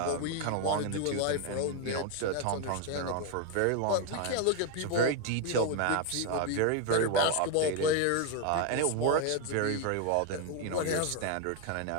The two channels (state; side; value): different; both; correlation 0.01